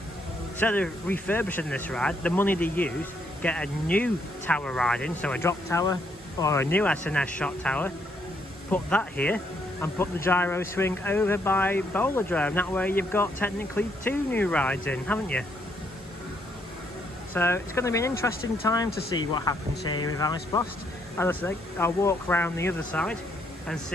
instead of refurbishing this ride, the money they use, get a new tower ride in, so a drop tower or a new SNS shot tower, put that here, and put the gyro swing over by Bowlerdrome. That way you've got technically 2 new rides in, haven't you? So it's going to be an interesting time to see what happens here with Ice Blast. As I say, I'll walk around the other side and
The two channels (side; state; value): both; normal; correlation 0.73